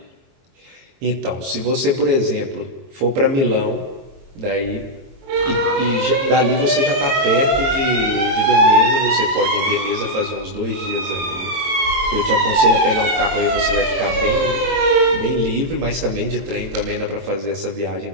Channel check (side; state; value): left; late; 22 ms